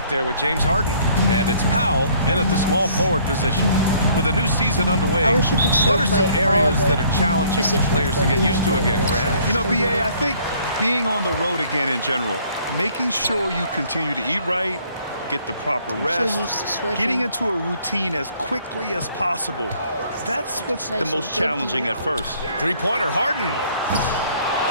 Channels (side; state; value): both; inverted; correlation -0.60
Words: there with James Harden. And it's Powell in at the small forward position. With a new season underway, I wish you could still what are some play areas all that are challenging for positions, players to but get we used to won't play again, this, Grant? so You know, still BA, good. I think being on the road again in general, making sure you continue to eat right, get the proper I'm rest, so used to switching. getting into a routine as quickly as possible. That's what's Play the some most good challenging D. at first. Three-pointer, Harden.